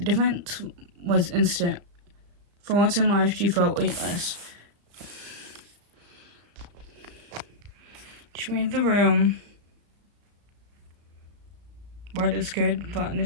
difference was instant. For once in life, she felt weightless. She made the room where the scared foot on the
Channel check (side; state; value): left; late; 34 ms